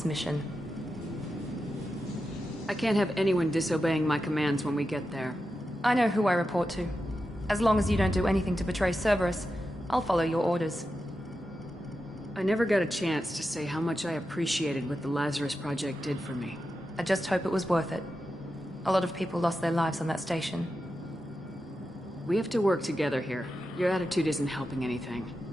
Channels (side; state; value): both; normal; correlation 0.90